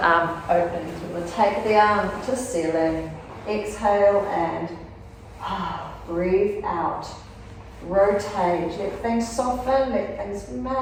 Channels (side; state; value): both; identical; correlation 1.00